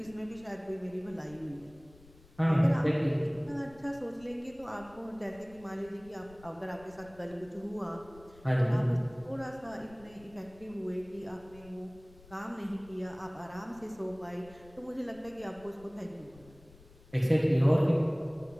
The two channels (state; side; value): noise; left; rumble, 23 dB below the sound